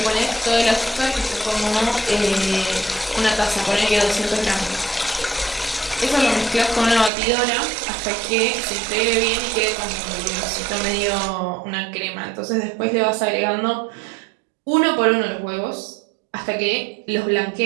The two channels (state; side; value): drops out; left; at 7.1 s